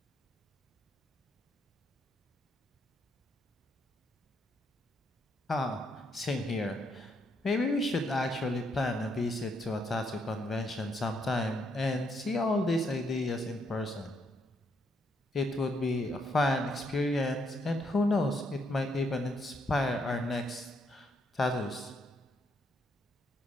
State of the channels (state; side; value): normal; both; correlation 0.75